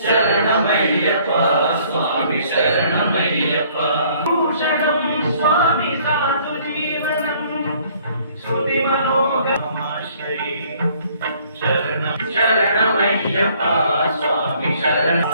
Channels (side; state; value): both; inverted; correlation -0.60